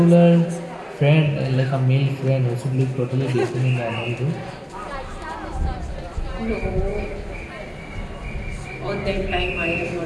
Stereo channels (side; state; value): both; identical; correlation 1.00